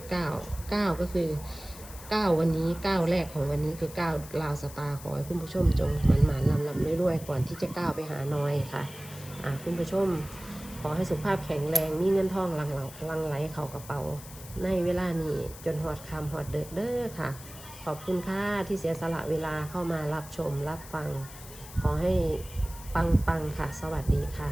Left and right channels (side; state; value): left; noise; hiss, 16 dB below the sound